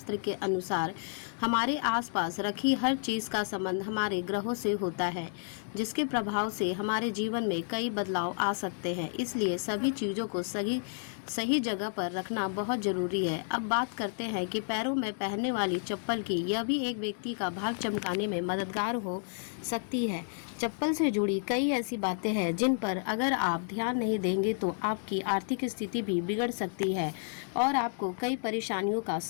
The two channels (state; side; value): silent; right; digital silence